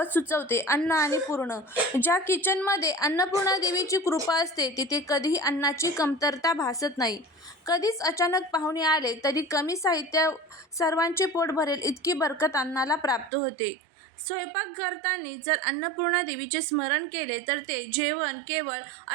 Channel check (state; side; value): drops out; left; at 13.3 s